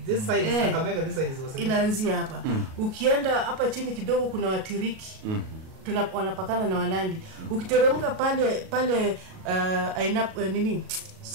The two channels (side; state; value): left; late; 37 ms